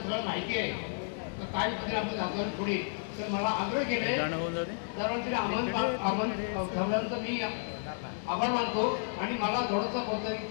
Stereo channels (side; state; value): right; silent; 56 dB below the other